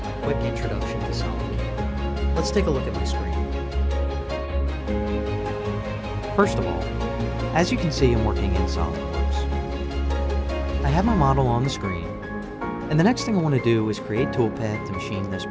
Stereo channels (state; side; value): identical; both; correlation 1.00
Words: a quick introduction to SolidCAM. Let's take a look at my screen. First of all, as you can see, I'm working in SolidWorks. I have my model on the screen, and the next thing I want to do is create toolpath to machine this